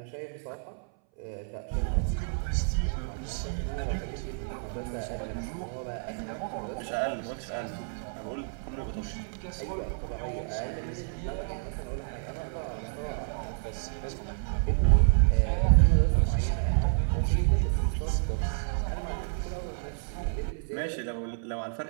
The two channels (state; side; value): silent; left; 58 dB below the other